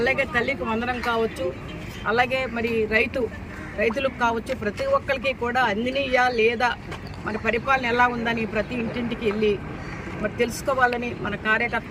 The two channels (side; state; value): both; identical; correlation 1.00